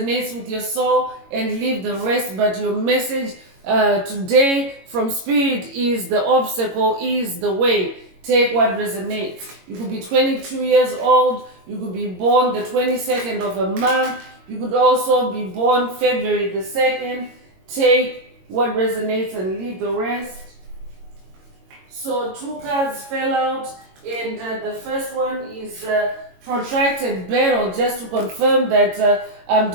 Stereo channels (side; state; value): left; late; 22 ms